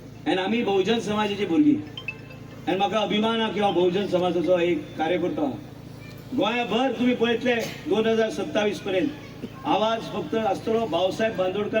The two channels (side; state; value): both; identical; correlation 1.00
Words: आनी आमी बहुजन समाजाची भुरगीं आनी म्हाका अभिमान आहा की हांव बहुजन समाजाचो एक कार्यकर्तो आहा गोंयभर तुम्ही पळयतले 2027 पर्यंत आवाज फक्त आसतलो भाऊसाहेब